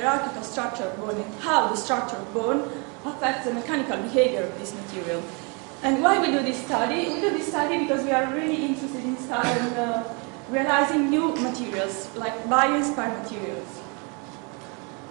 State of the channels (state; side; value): quieter; left; 33.4 dB